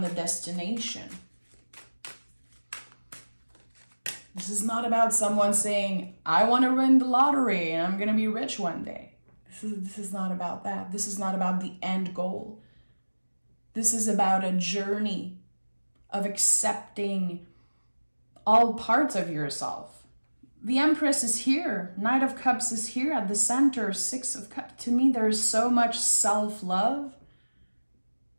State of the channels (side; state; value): both; inverted; correlation -1.00